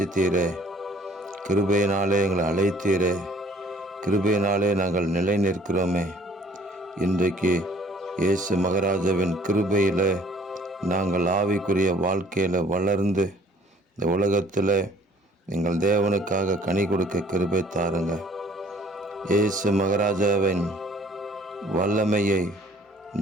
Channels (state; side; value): normal; both; correlation 0.57